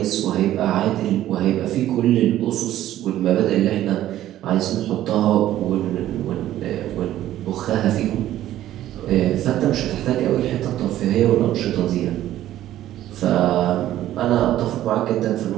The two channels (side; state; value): left; quieter; 13.2 dB